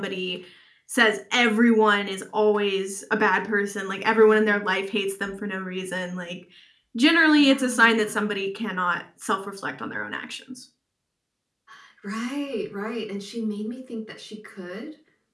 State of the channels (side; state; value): both; identical; correlation 1.00